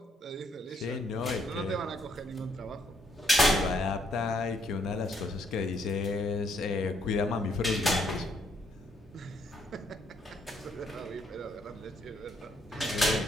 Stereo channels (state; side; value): normal; both; correlation 0.71